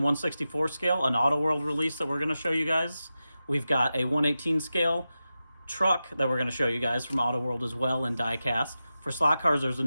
1/64 scale an Auto World release that we're going to show you guys. We've got a 1/18 scale truck that we're going to show you guys from Auto World as well in diecast. For slot cars, there's a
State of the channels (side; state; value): both; inverted; correlation -0.92